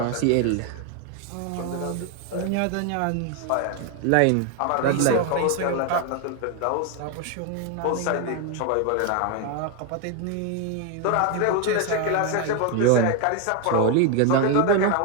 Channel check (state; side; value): different; both; correlation 0.01